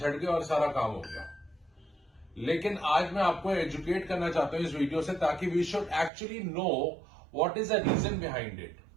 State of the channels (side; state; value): left; drops out; at 6.1 s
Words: गए और सारा काम हो गया. लेकिन आज मैं आपको एजुकेट करना चाहता हूं इस वीडियो से, ताकि we should actually know what is the reason behind it.